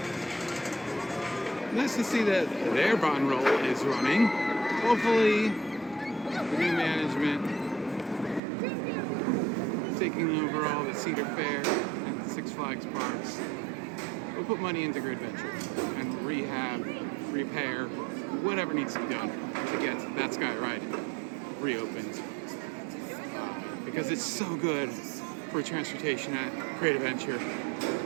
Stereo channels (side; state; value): left; drops out; at 8.4 s